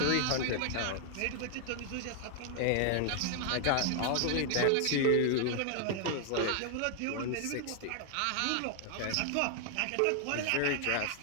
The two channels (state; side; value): different; both; correlation 0.00